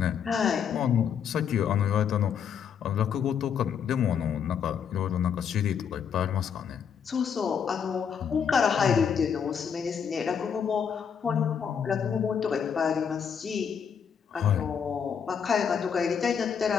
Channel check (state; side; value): quieter; right; 7.3 dB